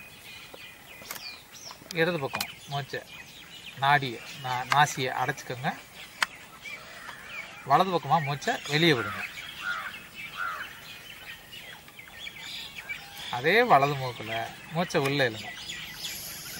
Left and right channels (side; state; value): both; identical; correlation 1.00